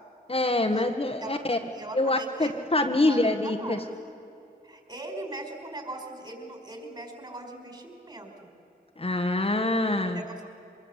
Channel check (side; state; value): both; normal; correlation 0.55